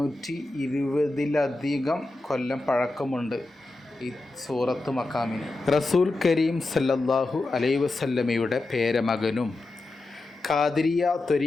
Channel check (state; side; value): quieter; right; 3.0 dB